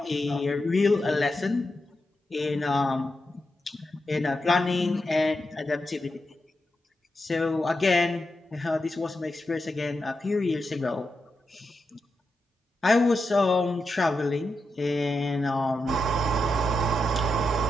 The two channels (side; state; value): both; normal; correlation 0.87